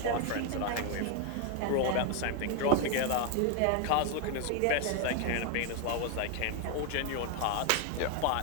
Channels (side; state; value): both; different; correlation 0.01